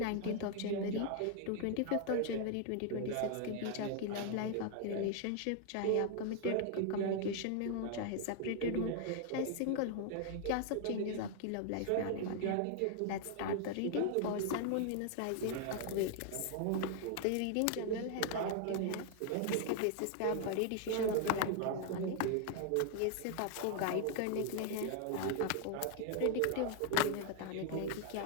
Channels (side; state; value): both; different; correlation 0.00